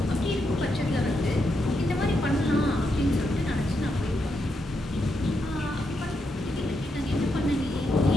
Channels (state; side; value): normal; both; correlation 0.82